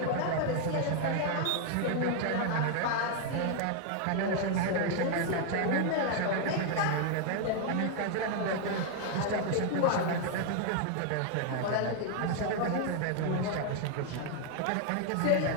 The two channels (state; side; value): different; both; correlation 0.00